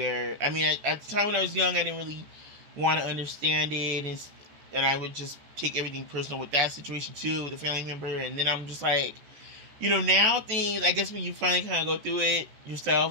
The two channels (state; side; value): late; left; 14 ms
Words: I mean, at the time when I was young, I didn't really want to understand it, and I would just take everything personal with that situation too, with a family member. And then I'm just like, you know, now things, I guess when you finally kind of go through it